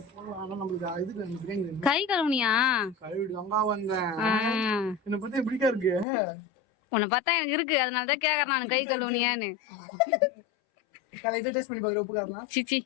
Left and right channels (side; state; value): right; drops out; at 6.1 s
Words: கை கழுவுனியா? கழுவிடு அங்க வந்தேன். என்ன பத்தி எப்படிக்கா இருக்கு? உன்னை பார்த்தா எனக்கு இருக்கு, அதனாலதான் கேக்குறேன் நான் கை கழுவுனியான்னு. இதை டேஸ்ட் பண்ணி பாக்குற உப்பு காரலாம். சிச்சி